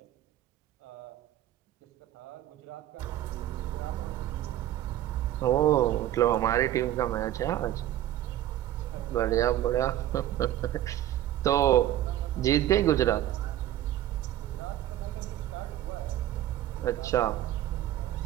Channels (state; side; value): quieter; left; 13.0 dB